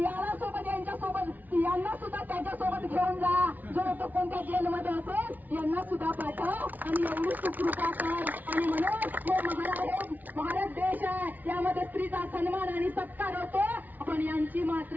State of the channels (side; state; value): left; late; 0.080 ms